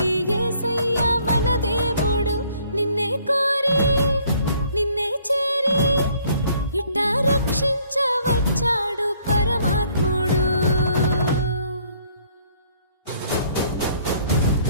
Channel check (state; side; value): inverted; both; correlation -0.62